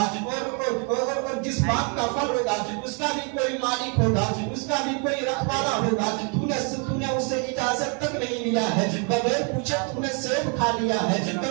اور جس باغ کا پھل ہوگا اس کا بھی کوئی مالک ہوگا, اس کا بھی کوئی رکھوالا ہوگا. تو نے اسے اجازت تک نہیں لیا ہے, بغیر پوچھے تم نے سیب کھا لیا ہے. تو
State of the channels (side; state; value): left; quieter; 35.5 dB